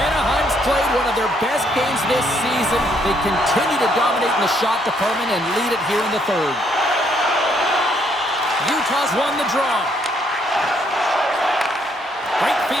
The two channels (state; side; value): normal; both; correlation 0.70